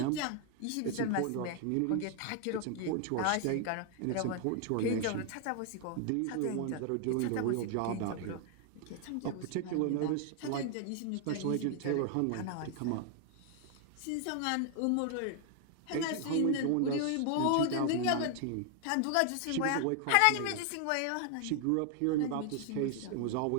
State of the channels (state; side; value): different; both; correlation 0.00